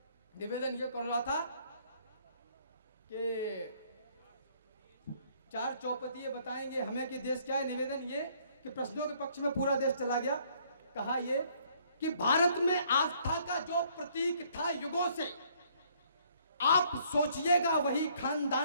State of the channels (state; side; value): inverted; both; correlation -0.64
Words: निवेदन ये कर रहा था कि चार चौपतिये बताएंगे हमें कि देश क्या है। निवेदन ये कि प्रश्नों के पक्ष में पूरा देश चला गया। कहा ये कि भारत में आस्था का जो प्रतीक था युगों से, आप सोचिएगा वही